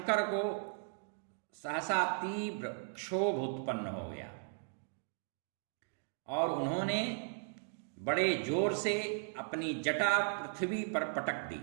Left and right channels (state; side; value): silent; left; digital silence